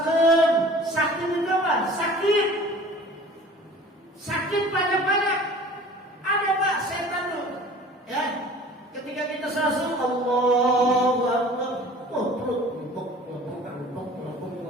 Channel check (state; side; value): normal; both; correlation 0.45